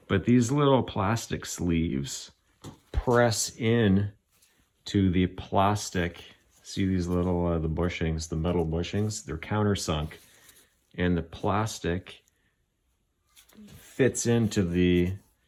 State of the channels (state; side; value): identical; both; correlation 1.00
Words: but these little plastic sleeves press in to the plastic. See these little, the bushings, the metal bushings, they're countersunk, and the plastic fits into the,